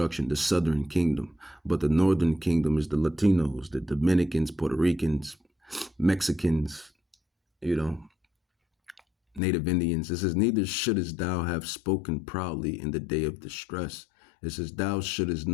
the southern kingdom, but the northern kingdom is the Latinos, the Dominicans, Puerto Ricans, Mexicans, Native Indians. It says, neither shouldest thou have spoken proudly in the day of distress. It says, thou shouldest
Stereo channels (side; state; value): right; drops out; at 9.4 s